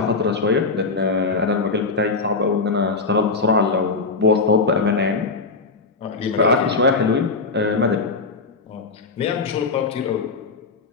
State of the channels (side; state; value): right; quieter; 4.0 dB